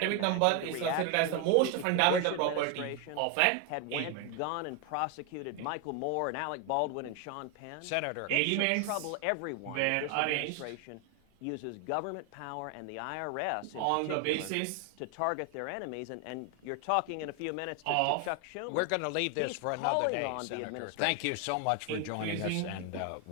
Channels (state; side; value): different; both; correlation 0.01